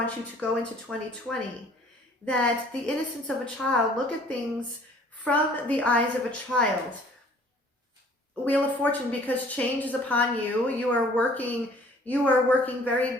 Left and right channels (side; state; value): both; normal; correlation 0.54